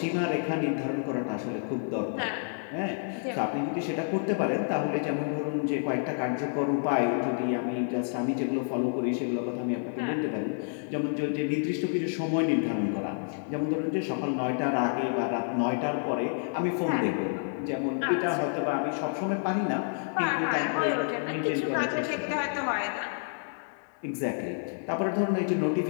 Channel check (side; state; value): right; silent; 58 dB below the other